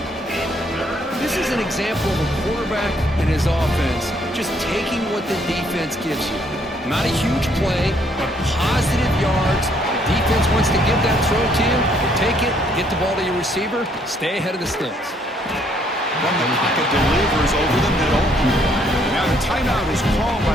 This is an example of a quarterback and his offense just taking what the defense gives you. Not a huge play, but positive yards. The defense wants to give that throw to you. You take it, get the ball to your receiver, stay ahead of the sticks. From the pocket, delivers over the middle. Now the timeout is called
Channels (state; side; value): normal; both; correlation 0.67